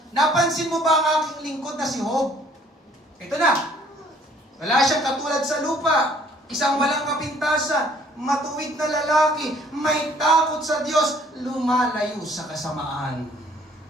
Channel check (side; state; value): both; normal; correlation 0.59